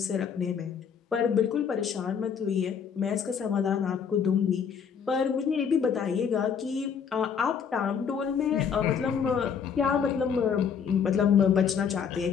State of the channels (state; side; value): quieter; right; 7.0 dB